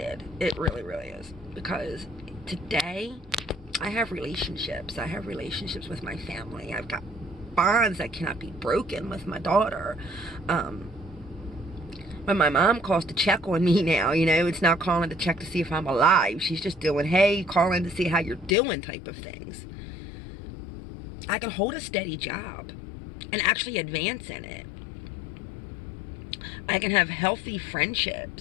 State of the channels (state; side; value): drops out; right; at 18.6 s